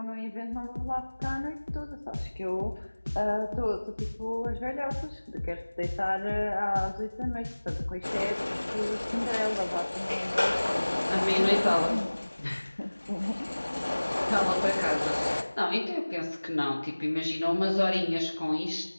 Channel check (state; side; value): inverted; both; correlation -1.00